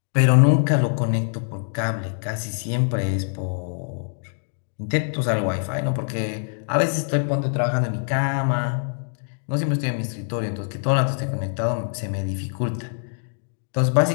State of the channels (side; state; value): right; silent; digital silence